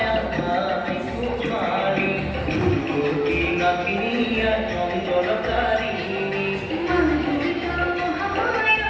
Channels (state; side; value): identical; both; correlation 1.00